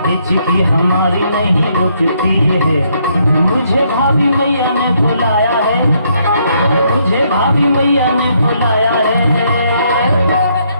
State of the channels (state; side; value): inverted; both; correlation -0.72